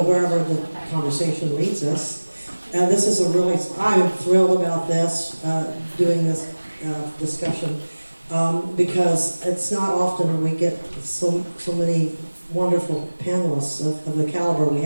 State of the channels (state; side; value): inverted; both; correlation -1.00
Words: wherever the conversation leads us. This is a really, I'm thrilled about this, doing this discussion, because it's not often we get so many wonderful panelists of the caliber we